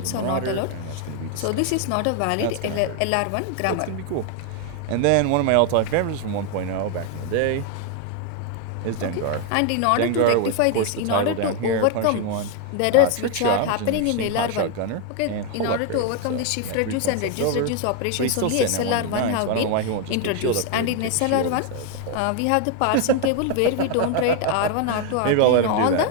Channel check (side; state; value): both; different; correlation 0.01